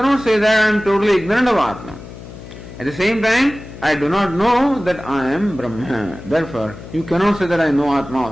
say that I am totally ignorant of Atma. At the same time, I do not know that I am Brahma. Therefore, you cannot say that I know Atma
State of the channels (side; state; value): left; noise; hum, 15 dB below the sound